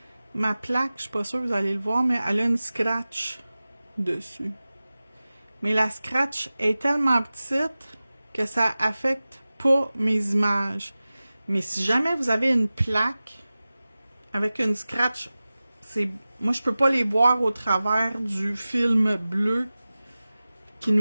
Ma plaque, je suis pas sûre que vous allez le voir, mais elle a une scratch dessus. Mais la scratch est tellement petite que ça affecte pas mes images. Mais si jamais vous avez une plaque avec une scratch, moi je peux pas les voir au travers du film bleu qui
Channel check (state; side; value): inverted; both; correlation -0.97